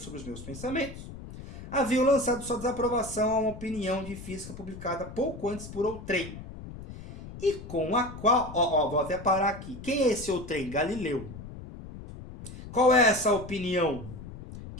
os meus pensamentos, haviam lançado sua desaprovação a uma opinião de física publicada pouco antes por outrem, e com a qual... vou até parar aqui. Quem é esse outrem? Galileu. Qual é essa opinião?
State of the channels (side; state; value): left; noise; rumble, 13 dB below the sound